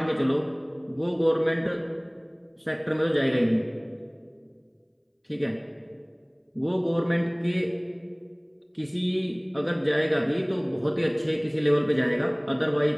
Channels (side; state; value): both; identical; correlation 1.00